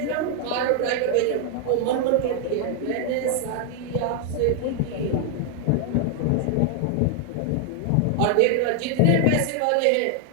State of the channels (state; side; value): different; both; correlation 0.00